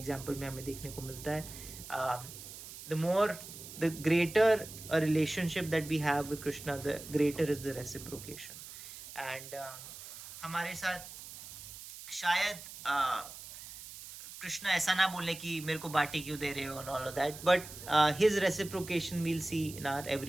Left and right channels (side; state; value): right; noise; hiss, 13 dB below the sound